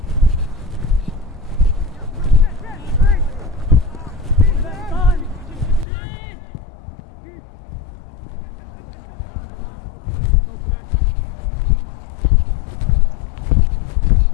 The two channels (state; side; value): drops out; right; at 5.9 s